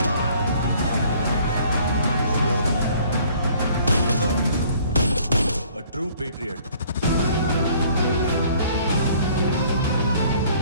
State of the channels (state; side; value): inverted; both; correlation -0.57